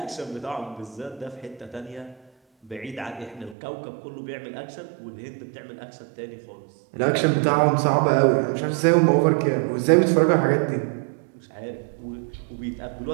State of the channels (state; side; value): drops out; left; at 3.6 s